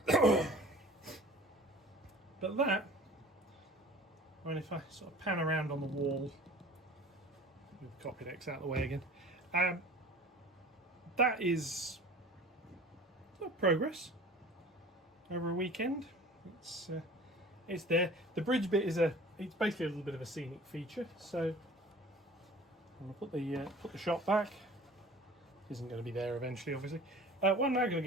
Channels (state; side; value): normal; both; correlation 0.44